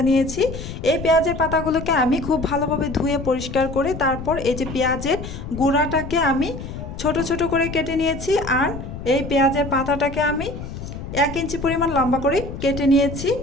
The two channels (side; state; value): left; noise; rumble, 9 dB below the sound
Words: নিয়েছি। এই পেঁয়াজের পাতাগুলোকে আমি খুব ভালোভাবে ধুয়ে পরিষ্কার করে তারপর এই যে পেঁয়াজের গুঁড়াটাকে আমি ছোট ছোট করে কেটে নিয়েছি। আর এই পেঁয়াজের পাতাটাকে আমি 1 ইঞ্চি পরিমাণ লম্বা করে কেটে নিয়েছি।